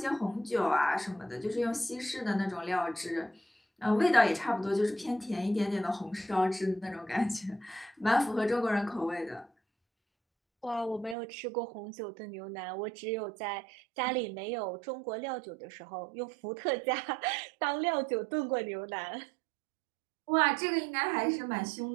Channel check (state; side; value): drops out; left; at 11.2 s